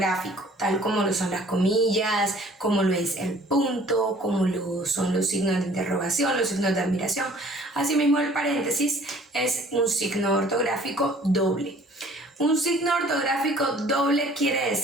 tal como lo son las comillas, como lo es el punto, como lo son los signos de interrogación, los signos de admiración. Asimismo, el paréntesis es un signo ortográfico doble. Un signo ortográfico doble quiere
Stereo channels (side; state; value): both; normal; correlation 0.53